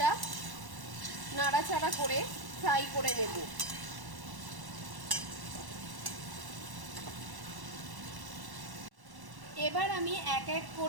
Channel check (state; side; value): late; left; 1.1 ms